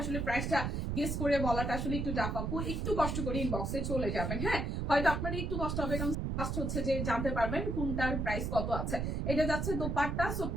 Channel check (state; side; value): noise; right; rumble, 1 dB below the sound